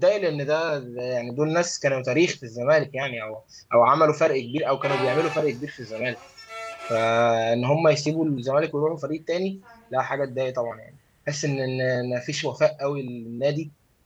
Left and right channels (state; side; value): identical; both; correlation 1.00